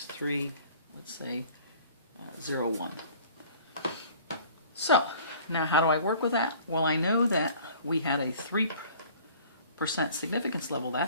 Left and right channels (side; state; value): both; inverted; correlation -0.49